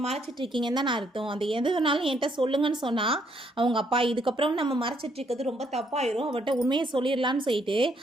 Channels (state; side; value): normal; both; correlation 0.71